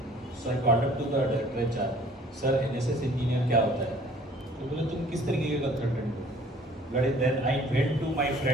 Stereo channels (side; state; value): both; normal; correlation 0.54